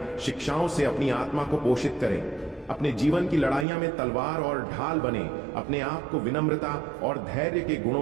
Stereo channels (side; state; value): left; drops out; at 3.7 s